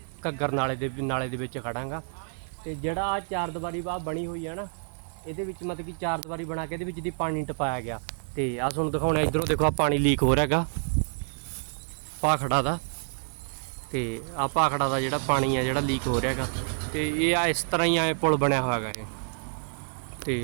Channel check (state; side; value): silent; left; 59 dB below the other